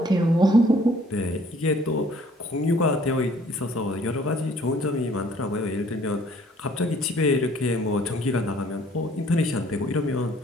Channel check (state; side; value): normal; both; correlation 0.58